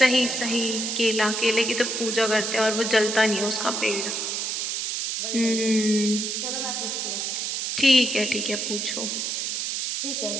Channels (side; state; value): right; noise; hiss, 2 dB below the sound